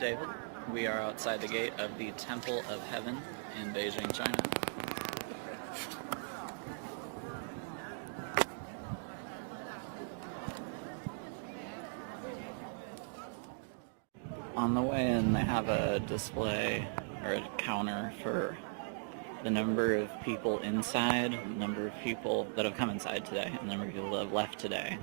We are outside the gate of the Temple of Heaven in Beijing, China. On the way in, they have a display or a counter for the number of people inside, the number of people that have come inside today, and the number of people that have left today,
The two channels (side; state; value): left; silent; digital silence